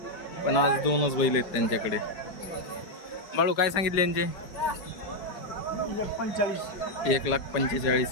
पण आज 2च बैल आहेत त्यांच्याकडे. बाळू काय सांगितले यांचे?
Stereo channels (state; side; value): late; right; 4.9 ms